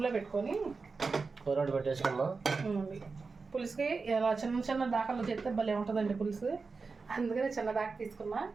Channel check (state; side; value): quieter; left; 4.4 dB